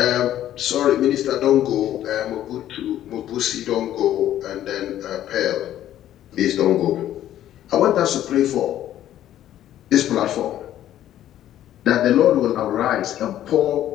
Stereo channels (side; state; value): right; quieter; 12.2 dB